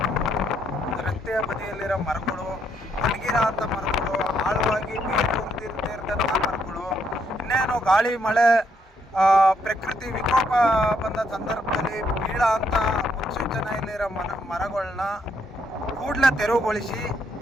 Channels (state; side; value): normal; both; correlation 0.73